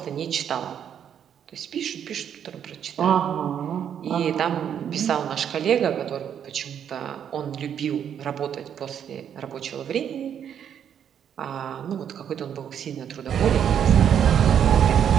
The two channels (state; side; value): quieter; left; 8.8 dB